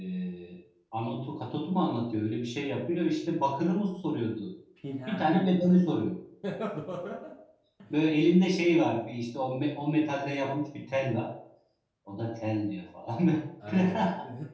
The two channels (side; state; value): both; identical; correlation 1.00